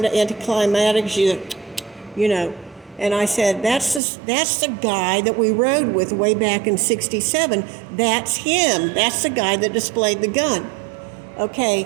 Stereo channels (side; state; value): left; drops out; at 4.0 s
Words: of anticlimactic, you know. And I said, that's the guy that we rode with way back in 67. That's him. That's the guy that displayed the gun.